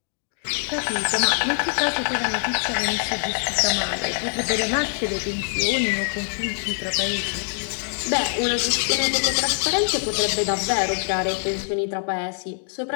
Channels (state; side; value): silent; right; digital silence